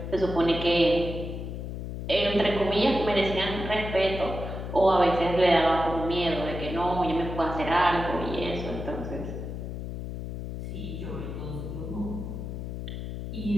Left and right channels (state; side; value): noise; left; hum, 6 dB below the sound